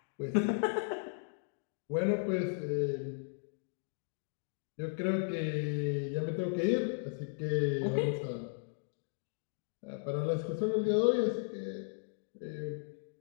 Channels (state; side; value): silent; right; digital silence